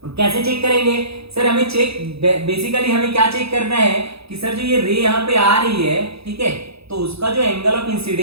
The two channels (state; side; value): late; left; 0.78 ms